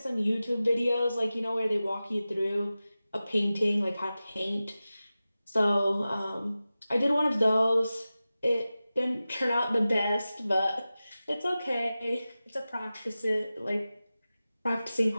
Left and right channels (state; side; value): inverted; both; correlation -0.95